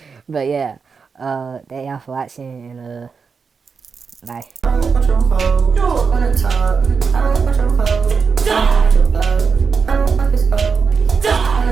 But yeah, thank y'all for watching, and bye. I don't want your hoe. You don't wanna talk. I don't want your hoe. I don't want your hoe. I don't want this hoe. I don't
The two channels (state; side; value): quieter; left; 5.4 dB